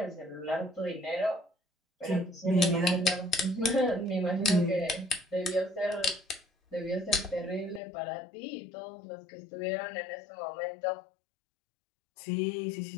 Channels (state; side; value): drops out; right; at 7.8 s